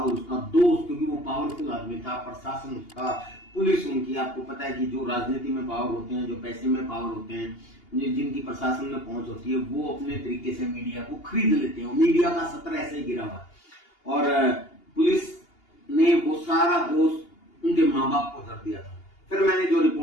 उसका दोस्त, क्योंकि वो पावरफुल आदमी था, प्रशासन उसका, पुलिस उनकी, आपको पता है कि जो राजनीति में पावर होते हैं, जो पैसे में पावर होते हैं, जिनकी प्रशासन में पहुंच होती है, वो अपने तरीके से मीडिया को खरीद लेते हैं। मीडिया का सत्र ऐसे ही गिरा हुआ और पुलिस ने वो सारा दोष उनके माँ बाप को धर दिया था। फिर मैंने जो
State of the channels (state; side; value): late; right; 2.8 ms